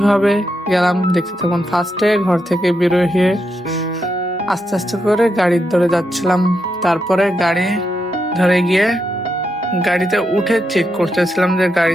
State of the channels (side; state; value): both; normal; correlation 0.83